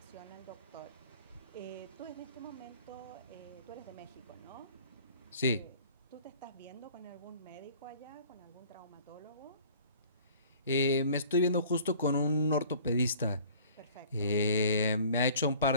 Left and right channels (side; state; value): both; inverted; correlation -0.50